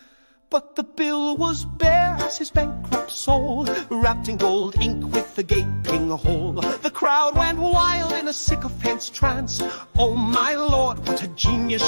But the bill was bare as his bankrupt soul, wrapped in gold ink with a gaping hole. The crowd went wild in a sycophant's trance. Oh my Lord, what a genius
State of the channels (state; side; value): inverted; both; correlation -1.00